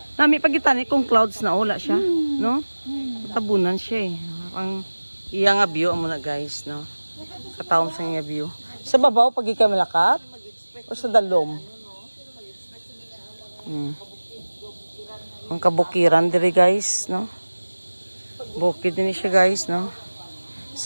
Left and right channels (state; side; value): inverted; both; correlation -1.00